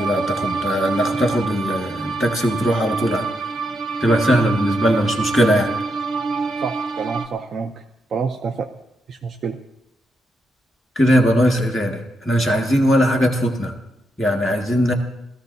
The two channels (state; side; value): normal; both; correlation 0.82